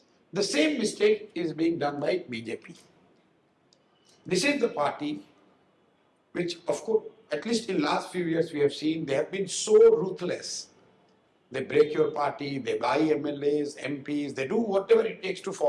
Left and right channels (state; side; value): identical; both; correlation 1.00